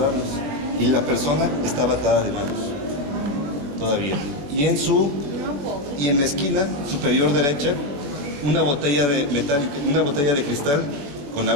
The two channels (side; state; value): left; late; 21 ms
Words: y la persona estaba atada de manos todavía. Y en la esquina superior derecha una botella de metálica, una botella de cristal con